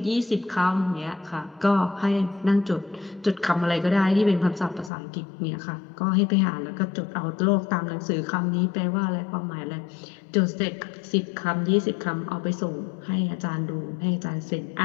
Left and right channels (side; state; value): right; drops out; at 4.9 s